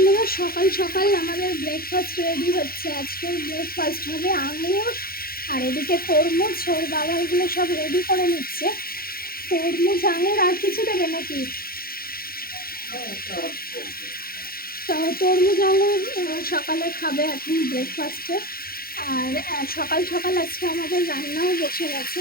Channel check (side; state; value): right; late; 0.43 ms